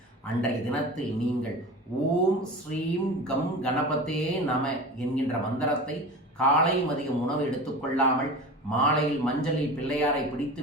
அன்றைய தினத்தில் நீங்கள் ஓம் ஸ்ரீம் கம் கணபதே நம என்கின்ற மந்திரத்தை காலை மதியம் உணவு எடுத்துக்கொள்ளாமல் மாலையில் மஞ்சளில் பிள்ளையாரை பிடித்து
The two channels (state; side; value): normal; both; correlation 0.33